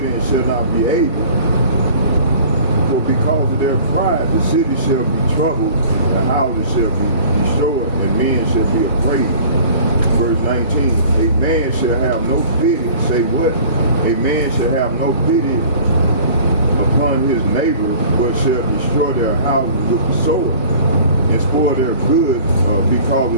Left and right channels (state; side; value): inverted; both; correlation -0.47